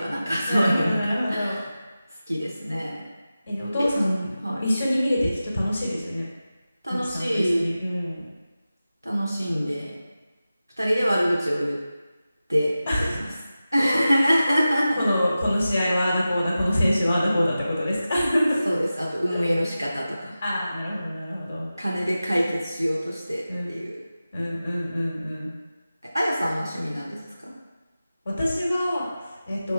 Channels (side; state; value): both; inverted; correlation -0.94